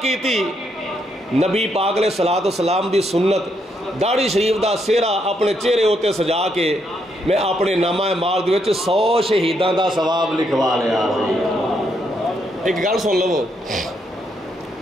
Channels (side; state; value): both; normal; correlation 0.76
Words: کیتی. نبی پاک علیہ الصلوۃ والسلام دی سنت داڑھی شریف دا سہرا اپنے چہرے ہوتے سجا کے میں اپنے نامہ اعمال دے وچ 100 شہیداں دا ثواب لکھوا لیا. ایک گل سن لو